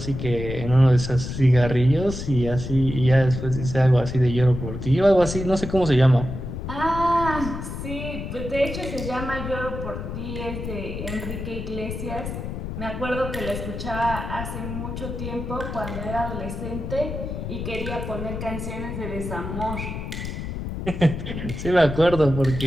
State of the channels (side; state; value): left; noise; rumble, 6 dB below the sound